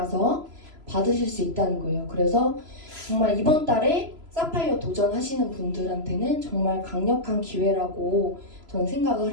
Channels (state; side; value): late; left; 3.0 ms